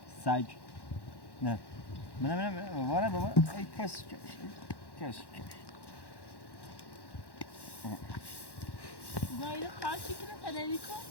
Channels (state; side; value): late; right; 1.1 ms